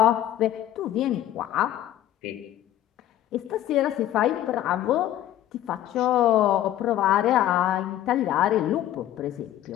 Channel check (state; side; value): quieter; right; 12.6 dB